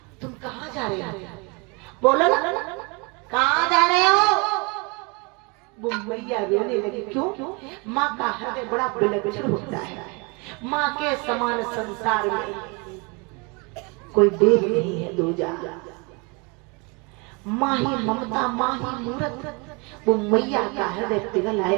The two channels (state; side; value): quieter; left; 30.4 dB